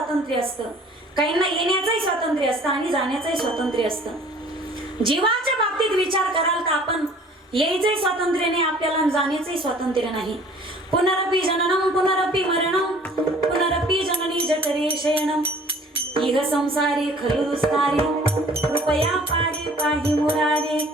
असतं. काहींना येण्याचंही स्वातंत्र्य असतं आणि जाण्याचंही स्वातंत्र्य असतं. जीवाच्या बाबतीत विचार कराल तर आपण यायचंही स्वातंत्र्य नाही आपल्याला, जाण्याचंही स्वातंत्र्य नाही. पुनरपि जननम पुनरपि मरणम पुनरपि जननी जठरे शयनम इह संसारे खलु दुस्तारे कृपया पारे पाहि मुरारे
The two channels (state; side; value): normal; both; correlation 0.51